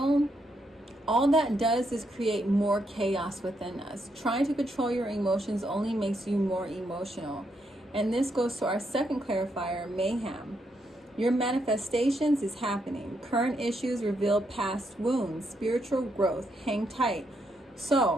all that does is create more chaos within us. Trying to control your emotions only makes you more emotional. And this goes to our second clarifier, mayhem. Your manifestations is happening. Current issues reveal past wounds. Spiritual growth. Hang tight.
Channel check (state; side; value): normal; both; correlation 0.78